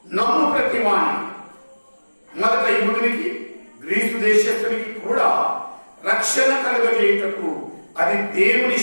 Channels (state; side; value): inverted; both; correlation -1.00